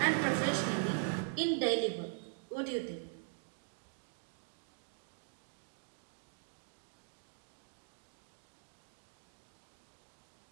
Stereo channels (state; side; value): silent; left; digital silence